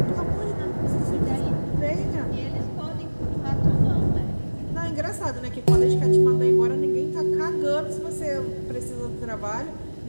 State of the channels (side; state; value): both; inverted; correlation -1.00